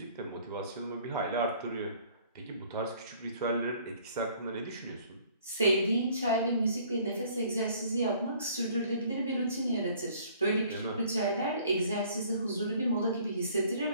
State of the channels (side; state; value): both; inverted; correlation -0.56